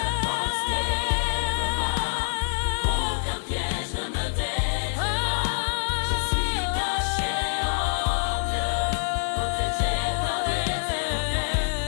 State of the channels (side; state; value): right; silent; 60 dB below the other